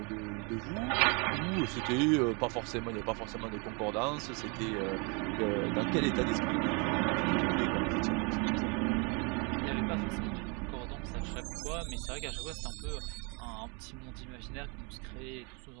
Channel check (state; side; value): quieter; left; 32.4 dB